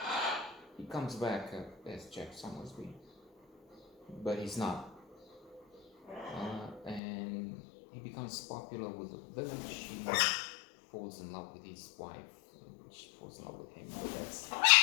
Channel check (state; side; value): drops out; right; at 7.0 s